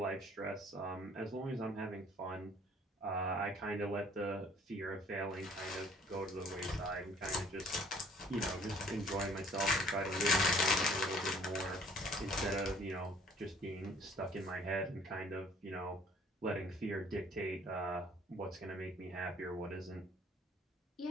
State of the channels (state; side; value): normal; both; correlation 0.56